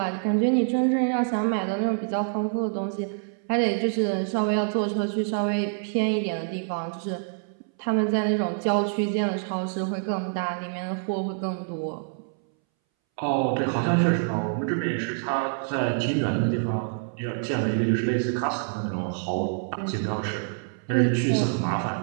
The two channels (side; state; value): left; silent; 61 dB below the other